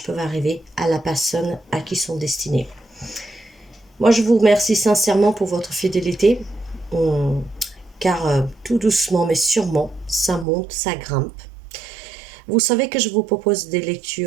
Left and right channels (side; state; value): left; drops out; at 10.5 s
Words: peuvent arriver à la personne à qui ils sont destinés. Moi je vous remercie sincèrement pour votre fidélité car tout doucement mais sûrement ça monte, ça grimpe. Vous savez que je vous propose des